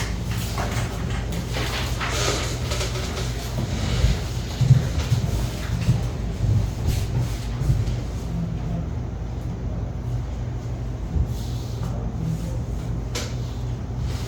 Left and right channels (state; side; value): identical; both; correlation 1.00